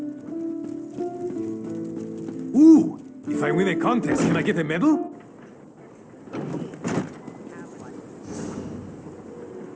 Ooh! If I win a contest, can I get a medal?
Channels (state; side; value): identical; both; correlation 1.00